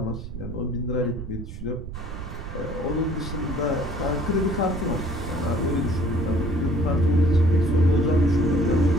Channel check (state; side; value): noise; right; rumble, 9 dB below the sound